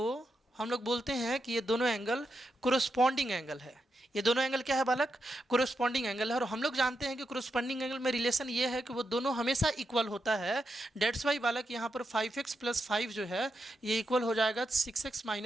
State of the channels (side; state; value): both; normal; correlation 0.85